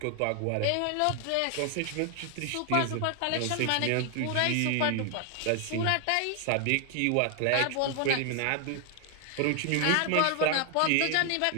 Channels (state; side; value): different; both; correlation 0.00